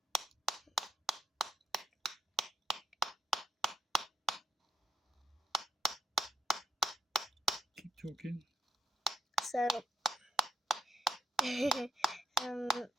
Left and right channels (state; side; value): normal; both; correlation 0.79